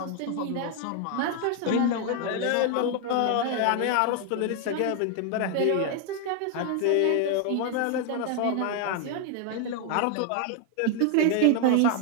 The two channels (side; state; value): both; different; correlation 0.01